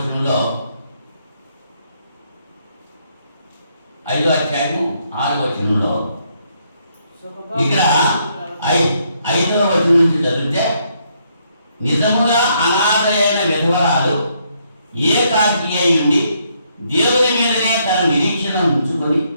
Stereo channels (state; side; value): inverted; both; correlation -0.73